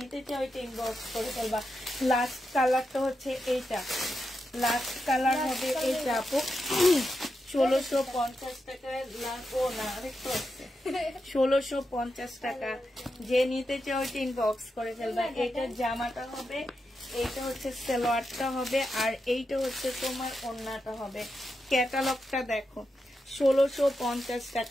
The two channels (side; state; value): both; normal; correlation 0.87